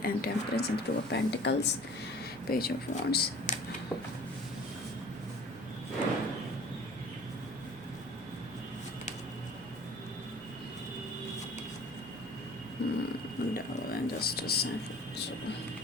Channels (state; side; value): noise; left; rumble, 26 dB below the sound